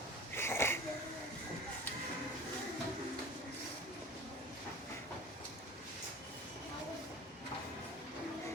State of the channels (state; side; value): normal; both; correlation 0.39